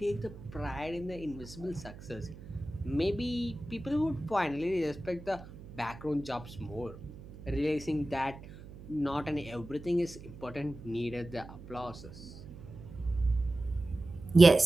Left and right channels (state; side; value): noise; right; hum, 16 dB below the sound